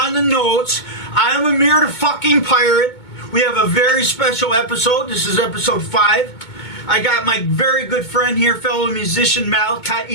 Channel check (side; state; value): right; late; 2.2 ms